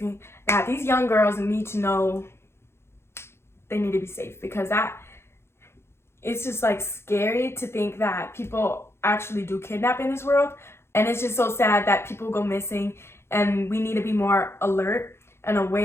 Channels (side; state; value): right; late; 0.12 ms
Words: that these young girls need to know they need to be safe, because it's just like scary to think that people actually do kidnap in this world, and it's just so sad that people go missing, and we need to be more alert and